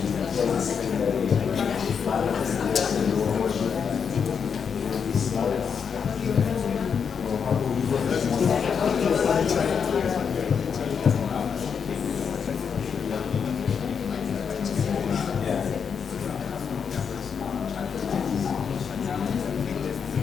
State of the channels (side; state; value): right; quieter; 6.6 dB